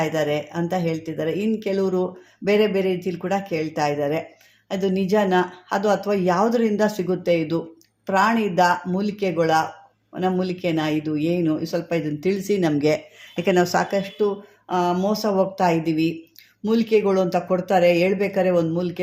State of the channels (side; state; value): both; identical; correlation 1.00